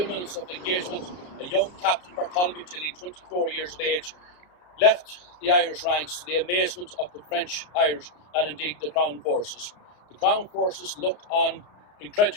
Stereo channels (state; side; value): late; right; 33 ms